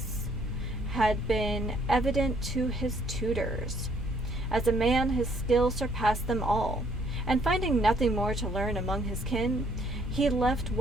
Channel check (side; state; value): both; normal; correlation 0.66